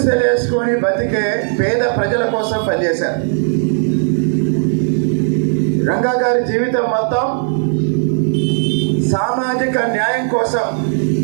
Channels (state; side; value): silent; left; digital silence